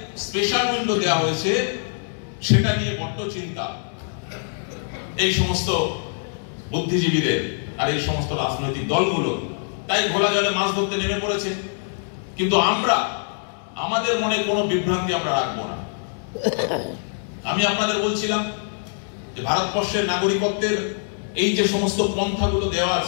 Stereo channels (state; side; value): silent; right; digital silence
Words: স্পেশাল উইন্ডো দেওয়া হয়েছে, সেটা নিয়ে বড্ড চিন্তা এই সমস্ত বুদ্ধিজীবীদের আর এই সমস্ত রাজনৈতিক দলগুলো। তাই ঘোলা জলে মাছ ধরতে নেমে পড়েছে। কিন্তু আমরা আমাদের মনে কোনো বিভ্রান্তি আমরা রাখবো না। আমি আপনাদের বলছিলাম যে ভারতবর্ষের নাগরিকত্বের এই যে সমস্ত পন্থাগুলো দেওয়া